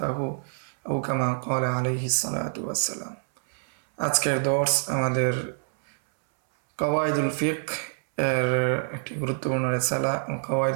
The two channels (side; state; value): left; silent; 61 dB below the other